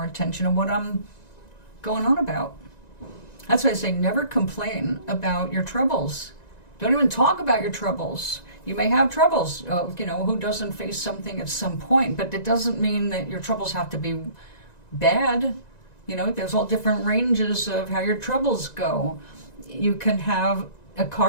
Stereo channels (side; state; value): right; late; 1.9 ms